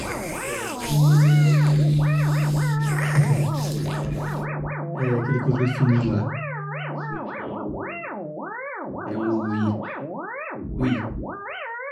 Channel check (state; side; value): identical; both; correlation 1.00